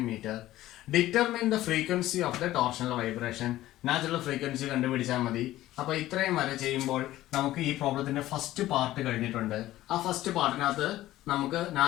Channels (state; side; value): quieter; right; 15.2 dB